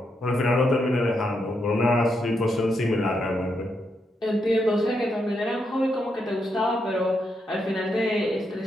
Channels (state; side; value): normal; both; correlation 0.81